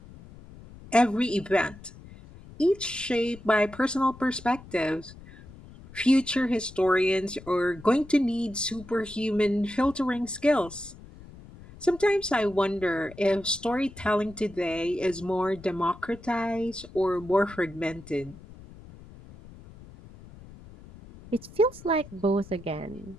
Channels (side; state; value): left; noise; rumble, 19 dB below the sound